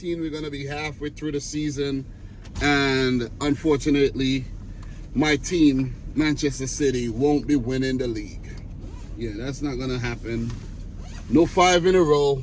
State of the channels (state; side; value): identical; both; correlation 1.00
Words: We're going to be halfway through the season and unfortunately my team, Manchester City, won't be winning the league. Yeah, that's not going to happen. No 5 in a row.